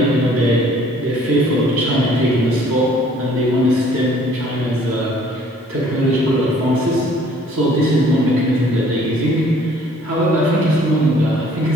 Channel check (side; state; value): both; normal; correlation 0.57